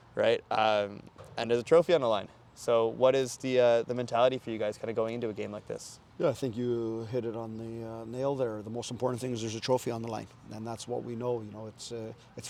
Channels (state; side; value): identical; both; correlation 1.00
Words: right? And there's a trophy on the line. So, what is the mentality for you guys, kind of going into a game like this? Yeah, I think you hit it on the nail there. The most important thing is there's a trophy on the line, and that's what we know. You know, it's